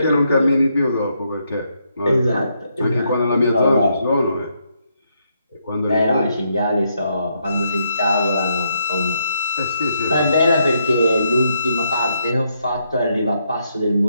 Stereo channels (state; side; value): inverted; both; correlation -0.77